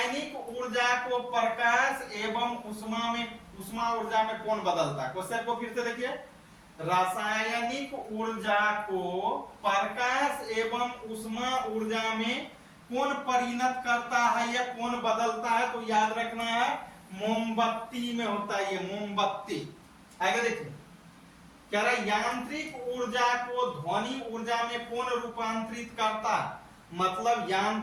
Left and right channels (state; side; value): identical; both; correlation 1.00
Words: ऊर्जा को प्रकाश एवं ऊष्मा ऊर्जा में कौन बदलता है? क्वेश्चन को फिर से देखिए, रासायनिक ऊर्जा को प्रकाश एवं ऊष्मा ऊर्जा में कौन परिणत करता है या कौन बदलता है? तो याद रखना है मोमबत्ती में होता है, ये मोमबत्ती। आगे देखिए, कह रहा है यांत्रिक ऊर्जा को ध्वनि ऊर्जा में कौन रूपांतरित करता है? मतलब